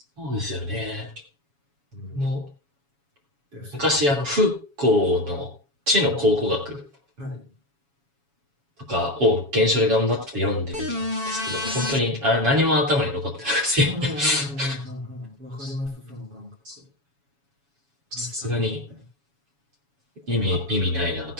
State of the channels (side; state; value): left; late; 7.1 ms